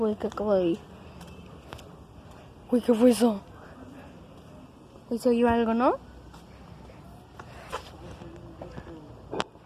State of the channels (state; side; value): identical; both; correlation 1.00